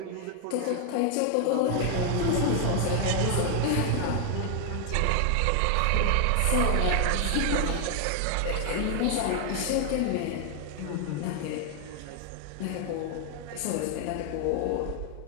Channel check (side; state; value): both; different; correlation 0.00